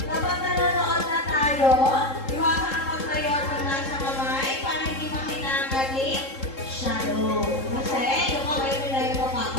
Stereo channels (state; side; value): late; right; 3.7 ms